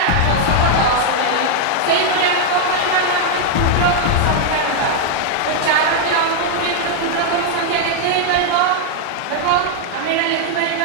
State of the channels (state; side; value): different; both; correlation 0.00